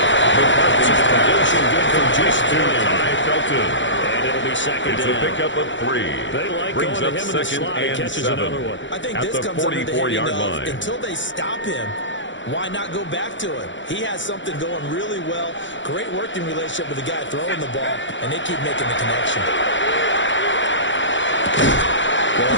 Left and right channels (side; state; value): right; late; 0.54 ms